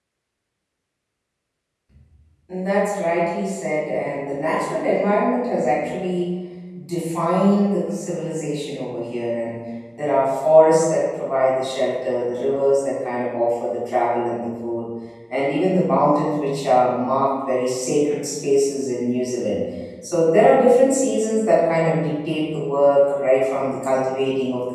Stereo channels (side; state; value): both; identical; correlation 1.00